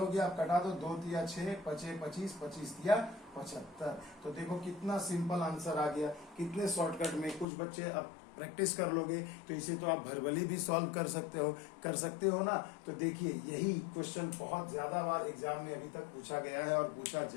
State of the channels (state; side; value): drops out; right; at 7.5 s